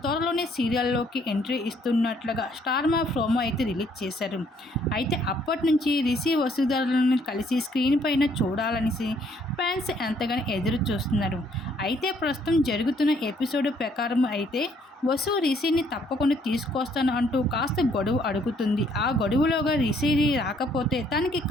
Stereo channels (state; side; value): normal; both; correlation 0.66